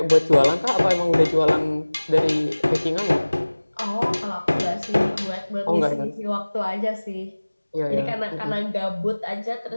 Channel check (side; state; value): both; inverted; correlation -1.00